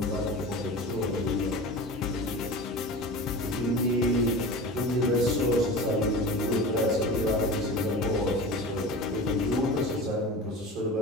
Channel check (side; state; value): both; normal; correlation 0.33